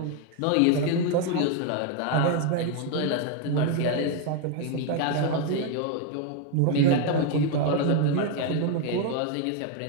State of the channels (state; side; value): different; both; correlation 0.01